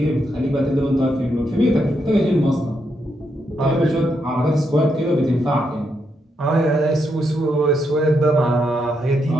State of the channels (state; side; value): normal; both; correlation 0.80